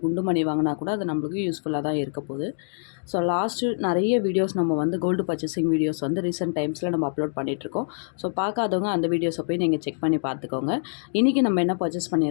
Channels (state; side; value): silent; right; digital silence